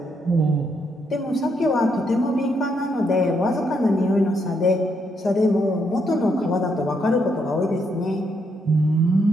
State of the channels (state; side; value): normal; both; correlation 0.76